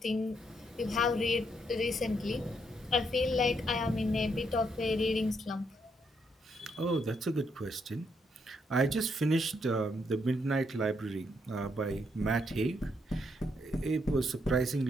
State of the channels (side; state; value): both; normal; correlation 0.76